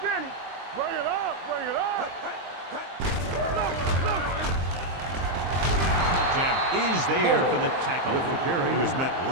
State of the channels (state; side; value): late; left; 23 ms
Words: Bring it up. Jammer is there for the tackle. He was met